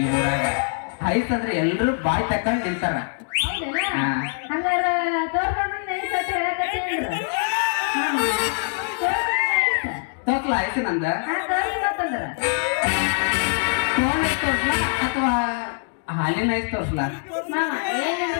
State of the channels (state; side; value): silent; right; 63 dB below the other